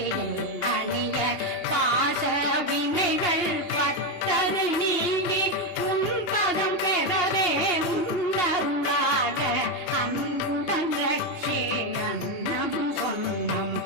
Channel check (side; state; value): right; late; 2.8 ms